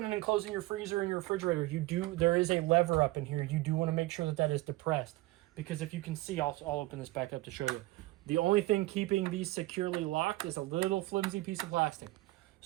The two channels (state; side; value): quieter; left; 19.0 dB